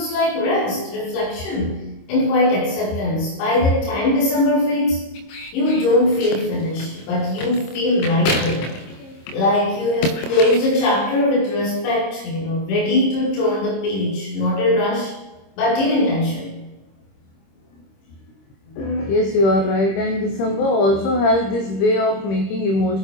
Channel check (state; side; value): late; right; 26 ms